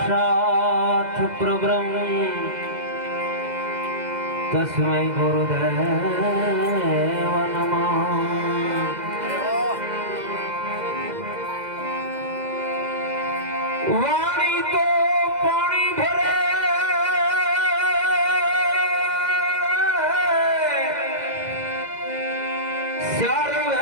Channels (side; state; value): left; late; 2.0 ms